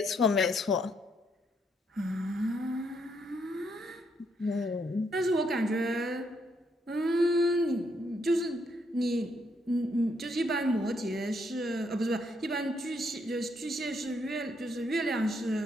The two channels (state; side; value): normal; both; correlation 0.74